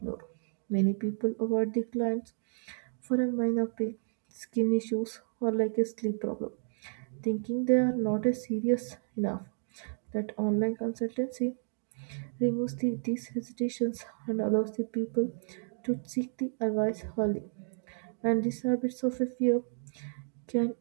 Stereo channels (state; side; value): silent; left; digital silence